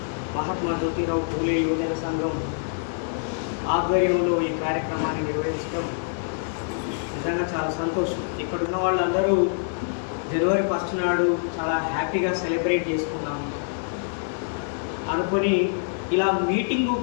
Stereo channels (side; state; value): right; silent; 61 dB below the other